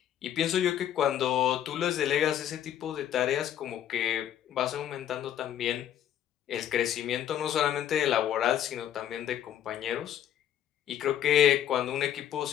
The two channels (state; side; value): quieter; right; 10.7 dB